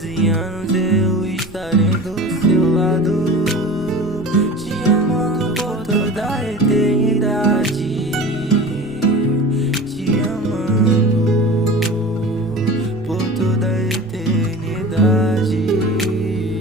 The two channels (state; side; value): noise; right; rumble, 19 dB below the sound